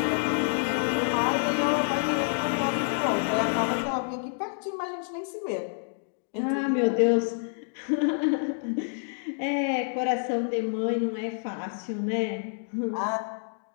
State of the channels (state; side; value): silent; right; digital silence